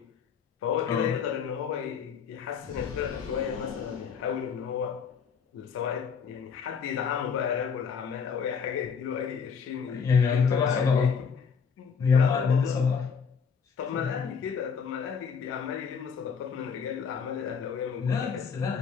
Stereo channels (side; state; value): right; quieter; 6.3 dB